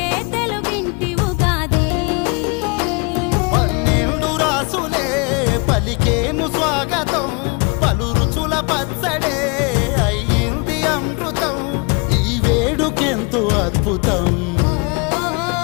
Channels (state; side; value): quieter; right; 29.8 dB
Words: తెలుగింటి ఉగాది. 12 రాసులే పలికేను స్వాగతం, పలు రుచుల పచ్చడే అయ్యింది అమృతం. ఈ వేడుకెంతో అద్భుతం.